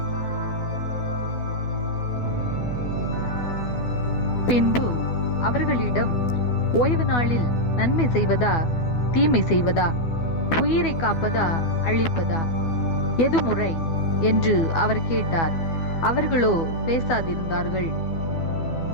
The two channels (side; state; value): right; late; 12 ms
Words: பின்பு அவர்களிடம், ஓய்வு நாளில் நன்மை செய்வதா தீமை செய்வதா, உயிரை காப்பதா அழிப்பதா, எது முறை என்று அவர் கேட்டார். அவர்களோ பேசாதிருந்தார்கள்.